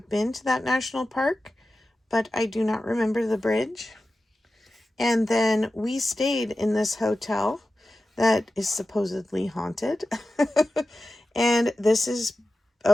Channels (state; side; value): normal; both; correlation 0.93